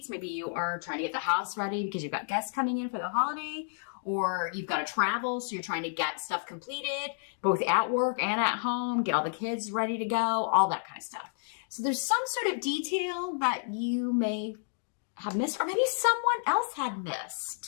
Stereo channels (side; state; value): right; silent; digital silence